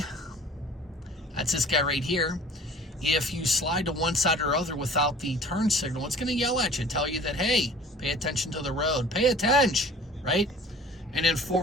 That's this guy right here. If you slide to one side or other without the turn signal, it's going to yell at you, tell you that, hey, pay attention to the road. Pay attention, right? And then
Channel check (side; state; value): both; normal; correlation 0.47